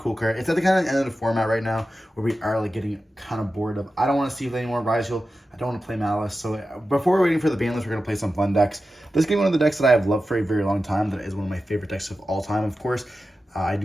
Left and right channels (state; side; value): normal; both; correlation 0.93